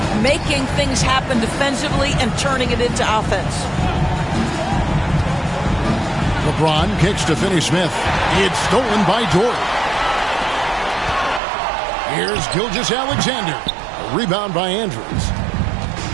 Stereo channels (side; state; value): left; drops out; at 11.4 s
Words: making things happen defensively and turning it into offense. LeBron kicks to Finney-Smith. It's stolen by Dort. Here's Gilgeous-Alexander. A rebound by Andrews.